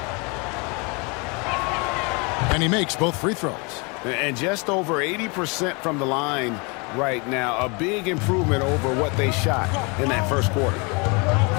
And he makes both free throws. And just over 80% from the line right now. A big improvement over what they shot in that first quarter.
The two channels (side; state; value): right; quieter; 30.6 dB